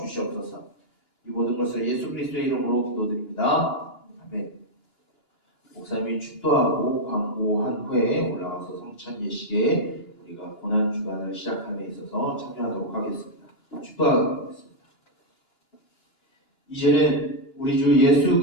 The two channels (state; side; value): late; right; 2.9 ms